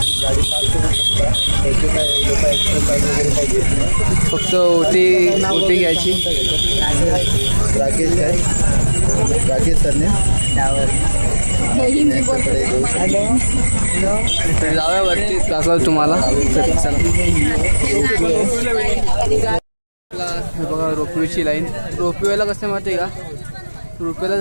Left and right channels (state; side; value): inverted; both; correlation -1.00